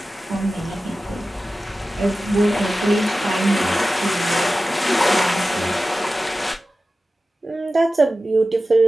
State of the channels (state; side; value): normal; both; correlation 0.95